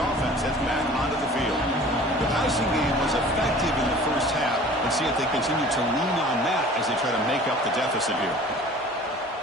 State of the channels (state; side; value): normal; both; correlation 0.45